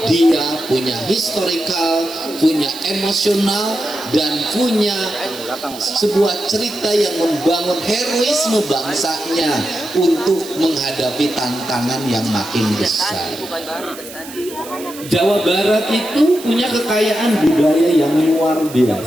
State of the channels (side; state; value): right; noise; hiss, 15 dB below the sound